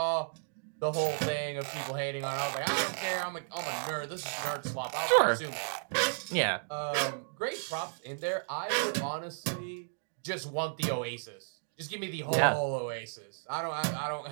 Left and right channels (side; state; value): left; silent; digital silence